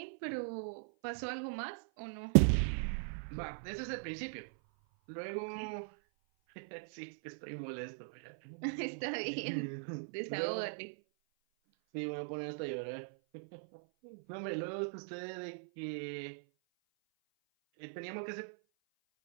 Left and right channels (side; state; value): left; silent; 51 dB below the other